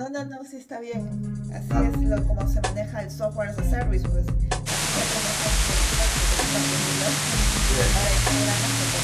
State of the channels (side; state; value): both; identical; correlation 1.00